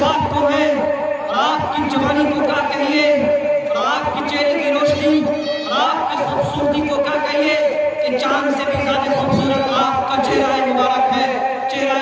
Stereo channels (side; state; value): both; identical; correlation 1.00